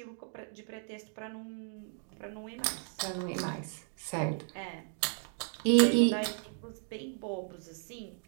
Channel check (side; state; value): left; silent; 55 dB below the other